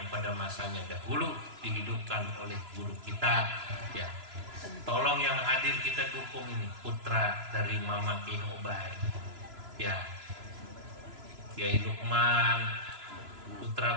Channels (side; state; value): left; late; 3.0 ms